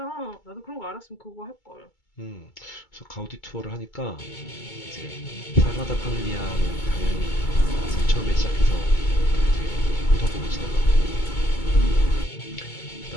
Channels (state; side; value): late; right; 2.2 ms